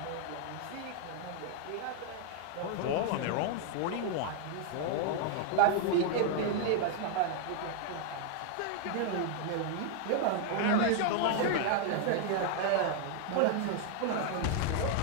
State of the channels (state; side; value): different; both; correlation 0.00